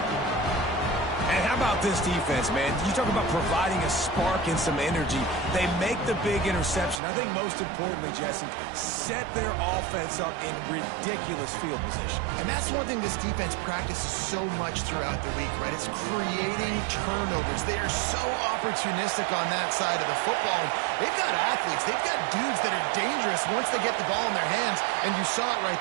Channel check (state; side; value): drops out; left; at 7.0 s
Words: And how about this defense, man? You talk about providing a spark and some energy. They make the big interception. I think most importantly, Jesse, set their offense up in ridiculous field position. And that's one thing this defense practices so much throughout the week, right? It's creating turnovers. They are so opportunistic on that side of the football. They've got athletes. They've got dudes that are dangerous once they get the ball in their hands, and you saw it right